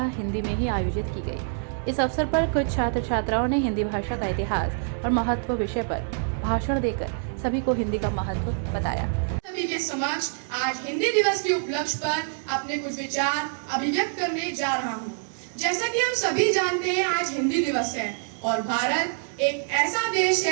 हिंदी में ही आयोजित की गई। इस अवसर पर कुछ छात्र छात्राओं ने हिंदी भाषा का इतिहास और महत्व विषय पर भाषण देकर सभी को हिंदी का महत्व बताया। सभी के समक्ष आज हिंदी दिवस के उपलक्ष्य पर अपने कुछ विचार अभिव्यक्त करने जा रहा हूँ। जैसा कि हम सभी जानते हैं, आज हिंदी दिवस है और भारत एक ऐसा देश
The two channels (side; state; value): left; silent; digital silence